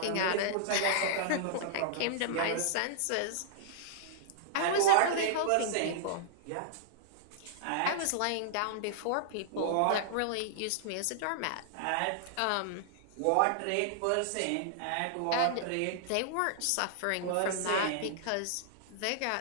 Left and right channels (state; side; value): different; both; correlation -0.01